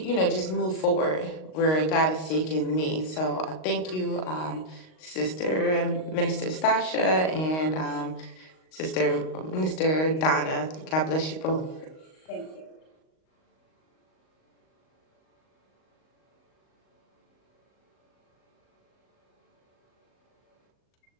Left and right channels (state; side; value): late; right; 38 ms